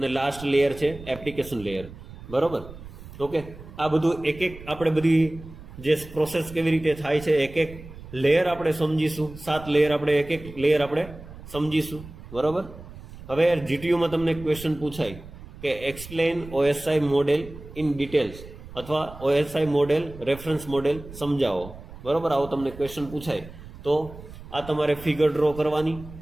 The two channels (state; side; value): noise; right; rumble, 16 dB below the sound